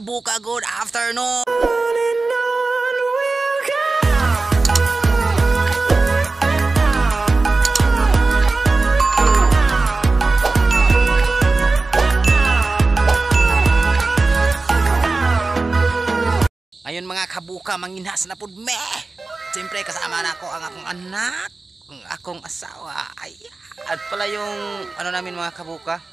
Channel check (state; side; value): quieter; left; 3.6 dB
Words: good afternoon! Ayun mga kabuka, manginhas na pud me. Siyempre kasama na ako ang akong anak, ang akong asawa. Ayan. At pala yung ano namin mga kabuka,